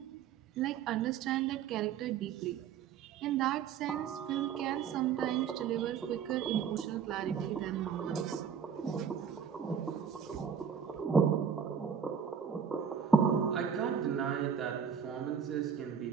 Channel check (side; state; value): left; quieter; 7.5 dB